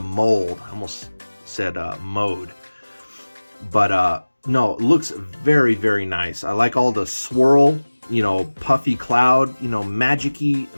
almost said mode. But no, it looks very, very nice. I like all the swirl, you know, puffy cloud, you know,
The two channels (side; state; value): both; inverted; correlation -1.00